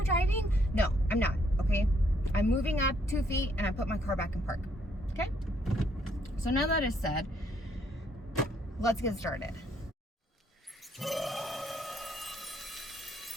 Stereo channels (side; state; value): both; normal; correlation 0.69